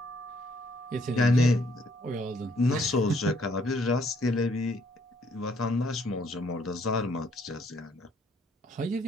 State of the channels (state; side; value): normal; both; correlation 0.67